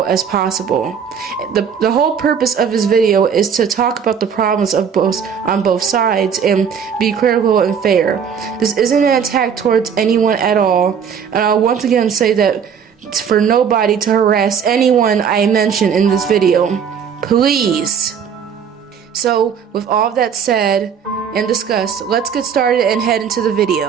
as possible. The whole purpose of this video is to talk about the problems on both sides and be critical and fair. This isn't an attack towards anyone at all, and I'll once again say that for nobody to harass anyone I mention in this video. Please. So, with all of that said and discussed, let's get started and head into the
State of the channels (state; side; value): quieter; left; 7.3 dB